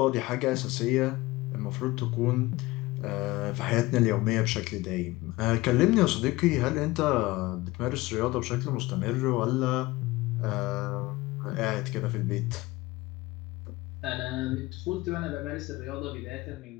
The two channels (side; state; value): right; quieter; 20.1 dB